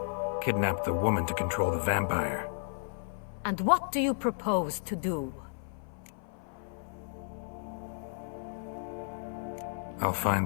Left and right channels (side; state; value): right; silent; 56 dB below the other